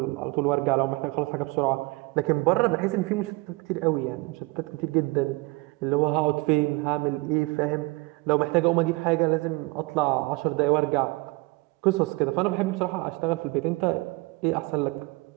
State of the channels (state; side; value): quieter; left; 24.6 dB